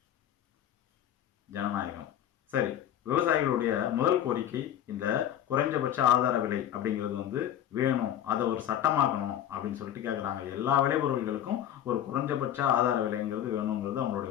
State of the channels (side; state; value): right; quieter; 10.9 dB